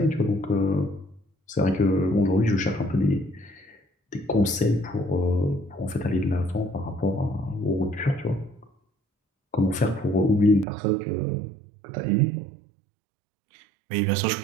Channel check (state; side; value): drops out; left; at 10.7 s